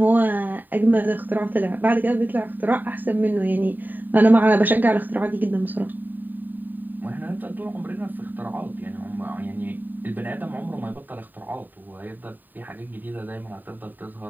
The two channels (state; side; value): late; left; 0.089 ms